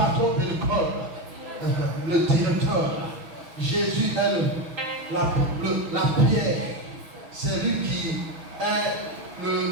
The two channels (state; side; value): late; left; 6.4 ms